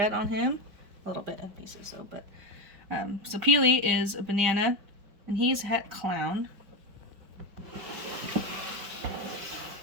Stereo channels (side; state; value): left; late; 5.0 ms